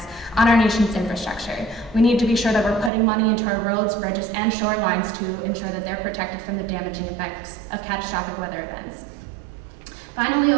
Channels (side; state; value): left; drops out; at 2.9 s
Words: on our nation's infrastructure. We need to be sure that we're putting money into our roads, bridges, and shorelines to ensure that they're protected from the damaging effects of catastrophic weather events. Finally,